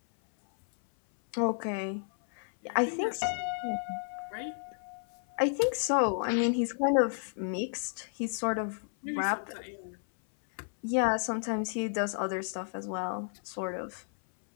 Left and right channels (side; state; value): right; silent; 56 dB below the other